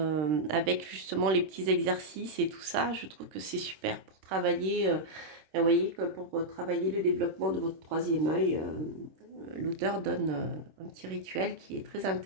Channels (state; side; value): late; left; 26 ms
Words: justement les petits exercices et tout ça. Je trouve que c'est super pour travailler, vous voyez, que pour travailler le développement de votre troisième œil. L'auteur donne un petit rituel qui est très